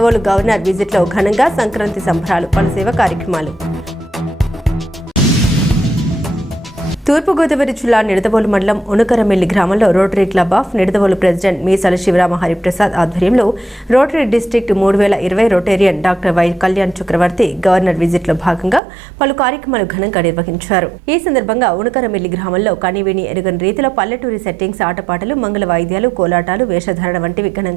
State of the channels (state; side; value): drops out; left; at 18.8 s